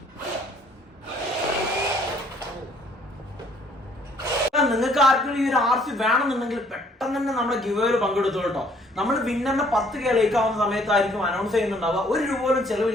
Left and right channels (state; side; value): normal; both; correlation 0.62